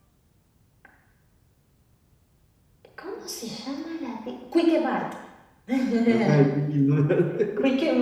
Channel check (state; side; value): identical; both; correlation 1.00